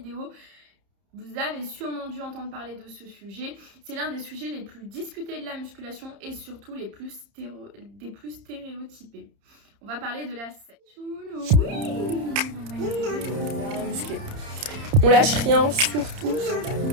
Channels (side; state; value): left; late; 30 ms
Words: Vous avez sûrement dû entendre parler de ce sujet, c'est l'un des sujets les plus discutés de la musculation et surtout des plus stéréotypés. On va parler de la sèche. Oui, on va muscler. On lâche rien, surtout.